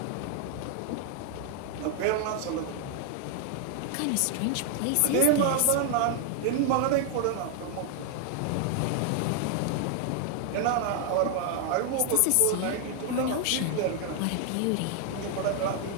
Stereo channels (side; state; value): both; different; correlation 0.00